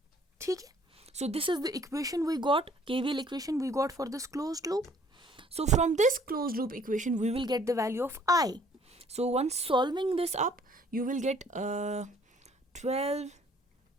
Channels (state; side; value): normal; both; correlation 0.59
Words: ठीक है? So this is the equation we got, KVL equation we got for this closed loop. So from this closed loop equation, we will get the value of I. So once solving this up, you will get 12.